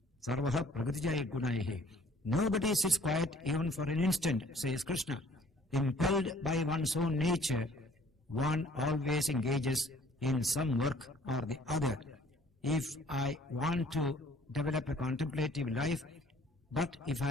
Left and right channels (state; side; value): normal; both; correlation 0.56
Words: sarvaha pragatijay gunaihi. Nobody sits quiet even for an instant, says Krishna. Impelled by one's own nature, one always engages in some work or the other. If I want to develop a contemplative life, but if I